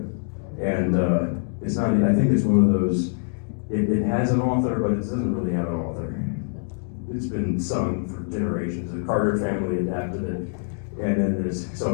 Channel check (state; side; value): silent; right; 62 dB below the other